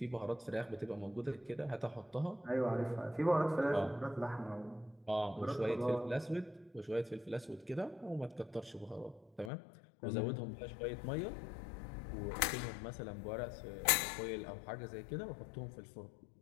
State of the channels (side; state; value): right; drops out; at 9.5 s